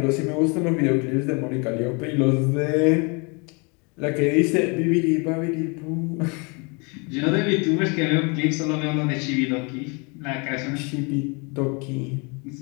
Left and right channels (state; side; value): quieter; right; 31.8 dB